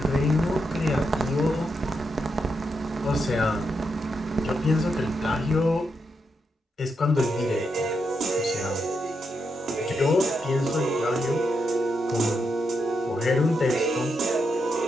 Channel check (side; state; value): both; normal; correlation 0.83